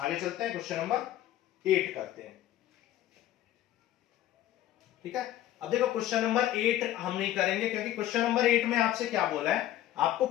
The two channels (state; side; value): quieter; right; 13.3 dB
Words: चलते हैं, क्वेश्चन नंबर 8 करते हैं। ठीक है, अब देखो क्वेश्चन नंबर 8 हम नहीं करेंगे क्योंकि क्वेश्चन नंबर 8 में आपसे क्या बोला है, आपको